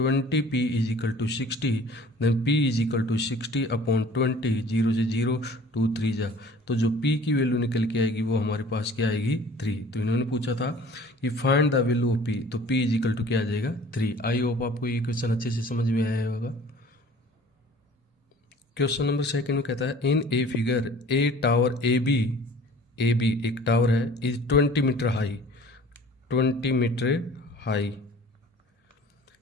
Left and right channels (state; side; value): normal; both; correlation 0.48